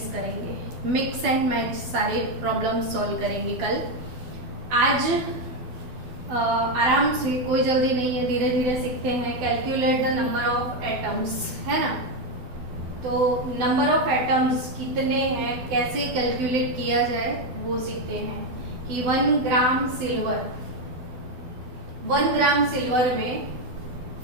करेंगे। मिक्स एंड मैच सारे प्रॉब्लम सॉल्व करेंगे कल। आज आराम से, कोई जल्दी नहीं है, धीरे धीरे सीखते हैं। Calculate the number of atoms, है ना। तो नंबर ऑफ एटम्स कितने हैं, कैसे कैलकुलेट किया जाए वो सीखते हैं। कि 1 ग्राम सिल्वर में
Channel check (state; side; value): late; left; 12 ms